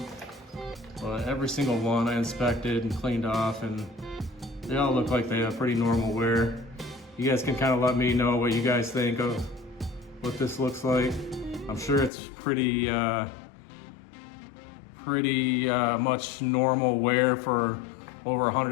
But every single one I inspected and cleaned off, and they all look like they have pretty normal wear. You guys can kind of let me know what you guys think of what this looks like. I'm sure it's pretty much normal wear for over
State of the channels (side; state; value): right; drops out; at 12.1 s